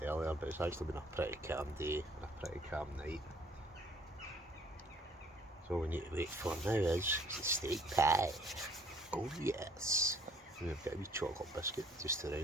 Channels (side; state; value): both; normal; correlation 0.59